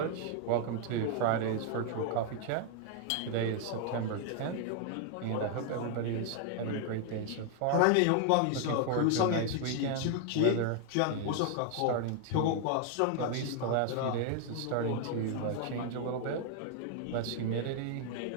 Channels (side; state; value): both; different; correlation 0.00